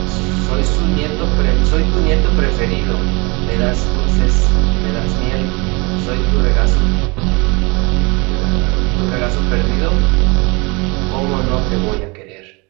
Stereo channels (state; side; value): quieter; left; 27.8 dB